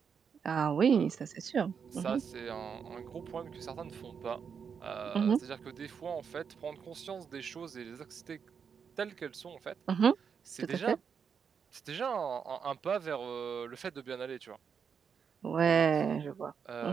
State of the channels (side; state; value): left; quieter; 6.7 dB